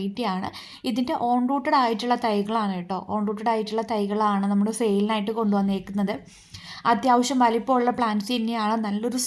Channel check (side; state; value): both; identical; correlation 1.00